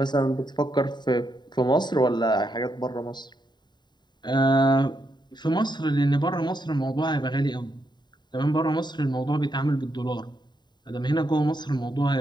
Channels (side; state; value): right; late; 0.21 ms